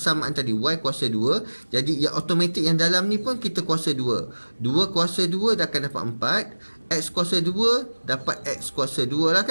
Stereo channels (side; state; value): both; inverted; correlation -1.00